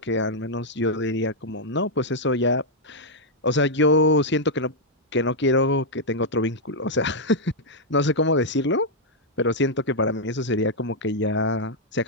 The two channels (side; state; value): both; normal; correlation -0.04